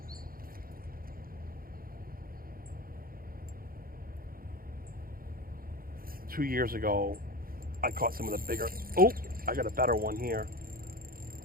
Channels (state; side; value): late; left; 0.42 ms